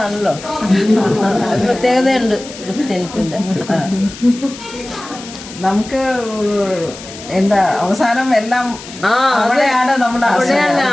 പ്രത്യേകതയുണ്ട് ക്രിസ്ത്യൻസിന്റെ. നമുക്ക് എന്താ അവസാനം എല്ലാം അവിടെയാണ് നമ്മുടെ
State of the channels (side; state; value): left; noise; hiss, 15 dB below the sound